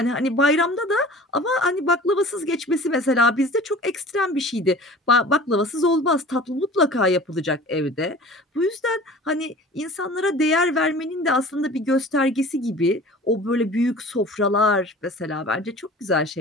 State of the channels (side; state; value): both; normal; correlation 0.43